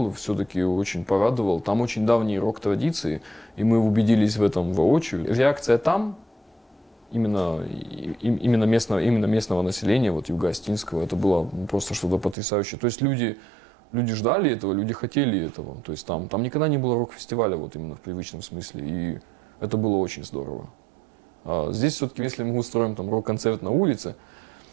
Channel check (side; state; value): left; drops out; at 12.4 s